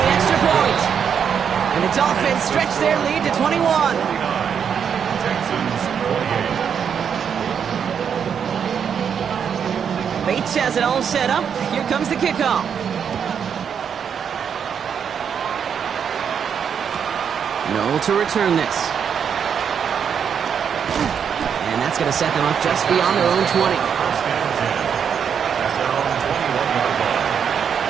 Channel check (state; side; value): quieter; left; 7.5 dB